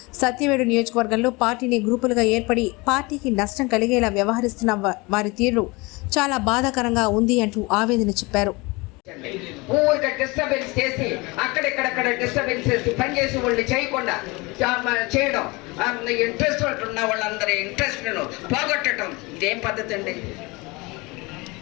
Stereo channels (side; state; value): right; quieter; 25.0 dB